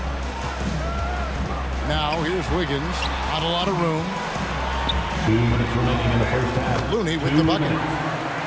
Now here's Wiggins. Not a lot of room. 2 minutes remaining in the first half. Looney with the bucket.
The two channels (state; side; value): identical; both; correlation 1.00